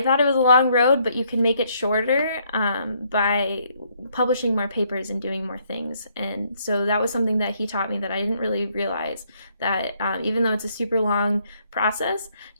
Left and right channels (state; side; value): inverted; both; correlation -0.69